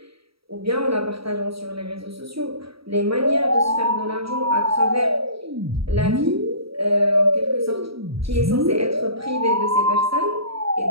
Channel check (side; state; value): left; late; 0.76 ms